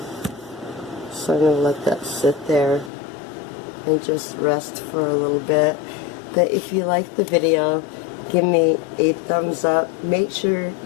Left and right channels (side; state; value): right; drops out; at 2.9 s